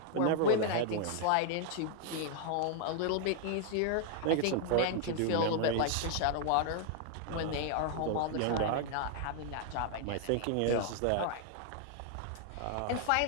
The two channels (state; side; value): different; both; correlation 0.00